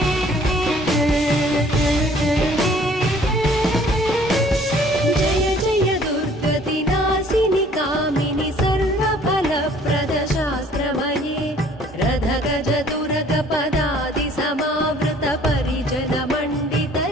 गज दुर्ग पदादि समावृत परिजन मण्डित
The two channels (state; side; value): normal; both; correlation 0.56